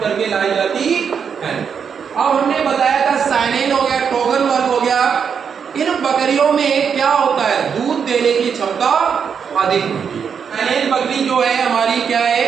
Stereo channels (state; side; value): quieter; left; 6.9 dB